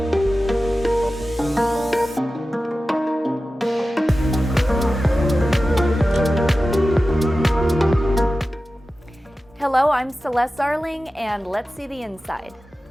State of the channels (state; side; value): normal; both; correlation 0.94